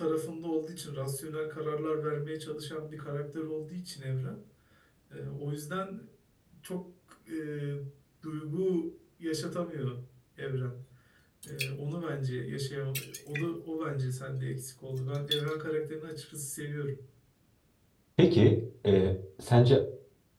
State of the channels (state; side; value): identical; both; correlation 1.00